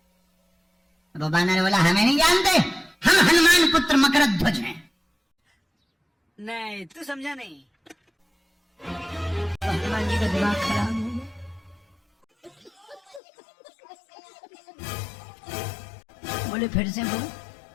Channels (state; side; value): drops out; right; at 13.2 s